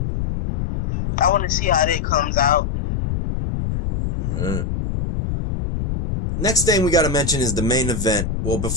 I want to see how that comes out. Next thing we got to mention is the main event. Well,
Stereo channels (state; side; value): noise; left; rumble, 2 dB below the sound